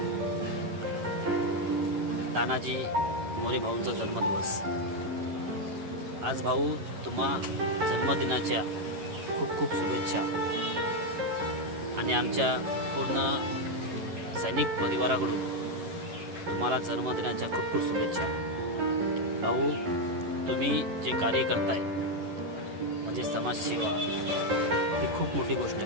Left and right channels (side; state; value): left; late; 11 ms